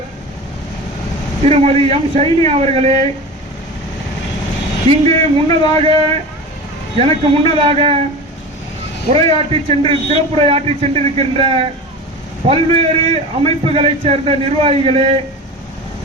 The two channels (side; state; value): both; normal; correlation 0.31